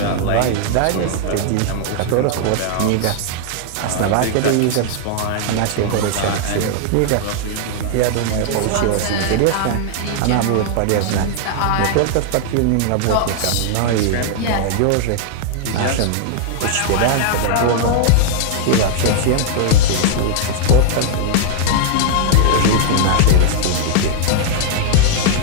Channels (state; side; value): different; both; correlation -0.01